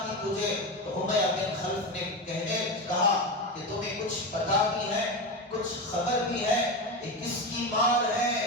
تجھے؟ تو امیہ بن خلف نے کہا کہ تمہیں کچھ پتا بھی ہے، کچھ خبر بھی ہے، یہ کس کی مار ہے،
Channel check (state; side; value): normal; both; correlation 0.18